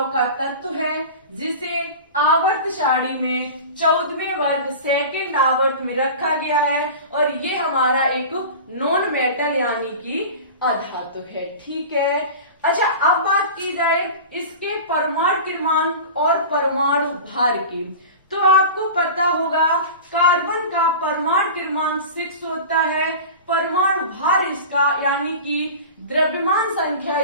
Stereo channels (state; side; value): inverted; both; correlation -0.33